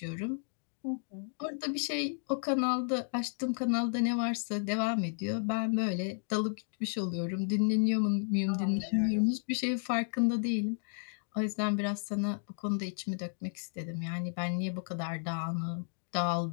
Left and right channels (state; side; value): silent; right; digital silence